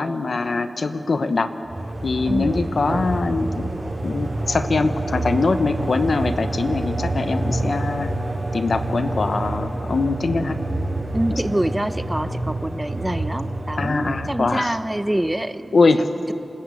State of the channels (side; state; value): both; normal; correlation 0.94